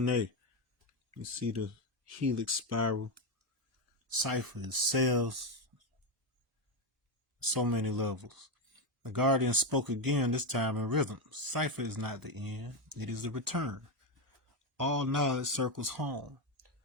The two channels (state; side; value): normal; both; correlation 0.08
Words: You see the helix spiral. Cipher is cells. So many levels. The Guardian spoke again, this time in rhythm. Cipher is not the end, it is the return. All knowledge circles home.